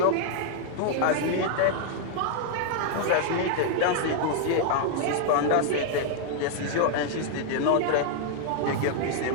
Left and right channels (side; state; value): both; different; correlation 0.00